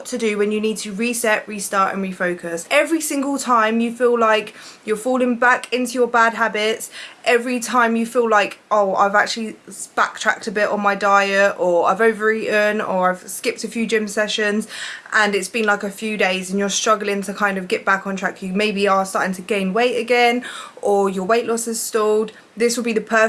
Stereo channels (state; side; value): identical; both; correlation 1.00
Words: to do when you need to reset, restart and refocus. Every single time you feel like you're falling back into your bad habits, every time you feel like, oh, I've actually backtracked a bit on my diet, or I've overeaten, or I've skipped a few gym sessions and it's been like a few days and you're struggling to kind of get back on track, you maybe are starting to gain weight again, or your weight loss is stalled, this will be the